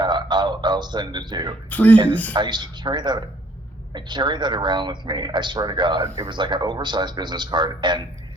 I'll send it to you. And Please. I used to carry that. I carry that around with me. I swear to God, it was like an oversized business card. And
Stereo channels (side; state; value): both; normal; correlation 0.61